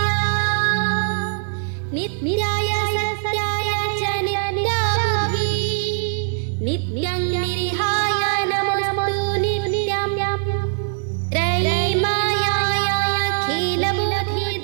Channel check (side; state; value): left; silent; 61 dB below the other